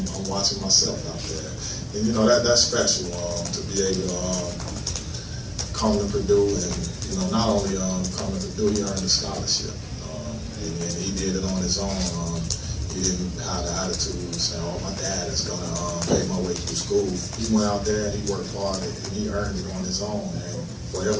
watching myself out there, and that's special to be able to come to Purdue, and not only come to Purdue, he earned a scholarship, and he did it on his own. He didn't have the attitude saying, "Oh, my dad is gonna pay my way through school." He went out there and he worked hard, and he earned it on his own. And for him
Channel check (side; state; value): both; identical; correlation 1.00